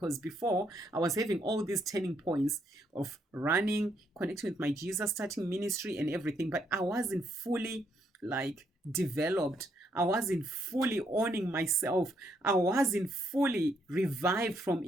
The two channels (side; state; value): both; normal; correlation 0.74